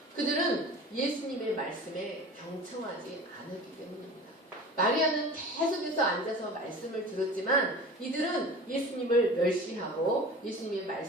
그들은 예수님의 말씀에 경청하지 않았기 때문입니다. 마리아는 계속해서 앉아서 말씀을 들었지만 이들은 예수님을 멸시하고 예수님의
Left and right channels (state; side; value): normal; both; correlation 0.38